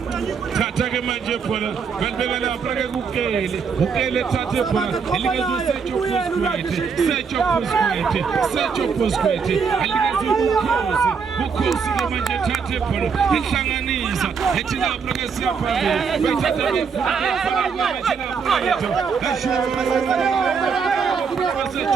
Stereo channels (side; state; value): left; quieter; 5.9 dB